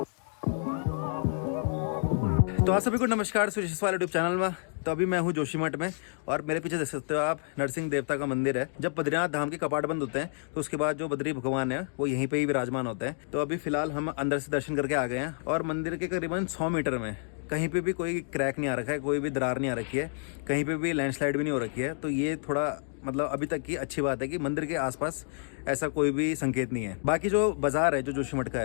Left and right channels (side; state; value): right; silent; digital silence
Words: तो आप सभी को नमस्कार सुरेश वाले यूट्यूब चैनल में। तो अभी मैं हूँ जोशीमठ में और मेरे पीछे देख सकते हो आप नरसिंह देवता का मंदिर है। जब बद्रीनाथ धाम के कपाट बंद होते हैं तो उसके बाद जो बद्री भगवान है वो यहीं पे ही विराजमान होते हैं। तो अभी फिलहाल हम अंदर से दर्शन करके आ गए हैं और मंदिर के करीबन 100 मीटर में कहीं पे भी कोई क्रैक नहीं आ रखा है, कोई भी दरार नहीं आ रखी है, कहीं पे भी लैंडस्लाइड भी नहीं हो रखी है। तो ये थोड़ा मतलब अभी तक की अच्छी बात है कि मंदिर के आसपास ऐसा कोई भी संकेत नहीं है। बाकी जो बाजार है जो जोशीमठ का